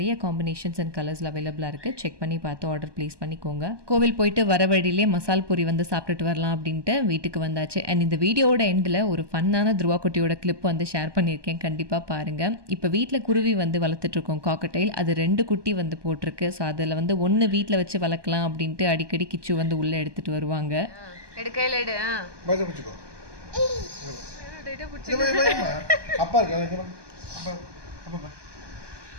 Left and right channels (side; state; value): left; late; 1.2 ms